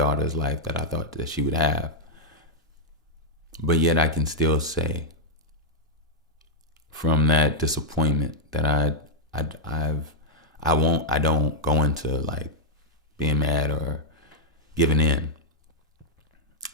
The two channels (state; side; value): normal; both; correlation -0.05